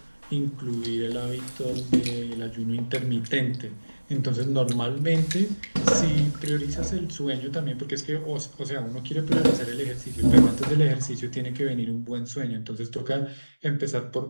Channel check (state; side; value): inverted; both; correlation -1.00